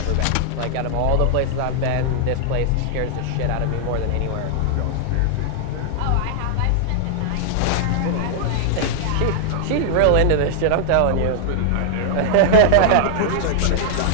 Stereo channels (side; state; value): both; different; correlation -0.01